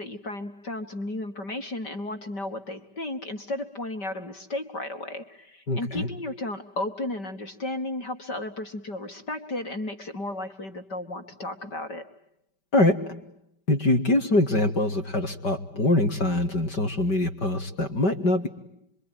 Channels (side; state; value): right; late; 5.1 ms